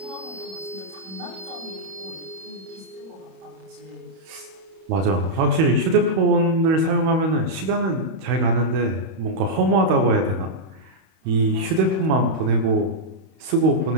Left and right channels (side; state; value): left; late; 31 ms